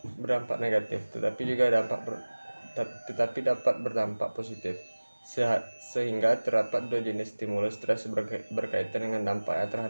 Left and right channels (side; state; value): both; inverted; correlation -1.00